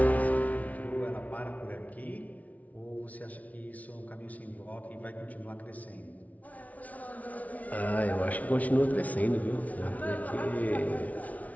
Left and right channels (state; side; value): late; right; 0.071 ms